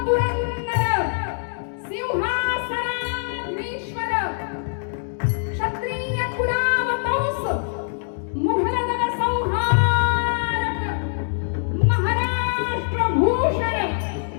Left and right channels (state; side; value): silent; right; digital silence